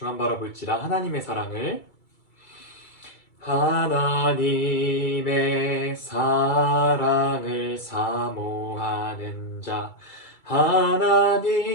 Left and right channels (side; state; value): right; late; 2.3 ms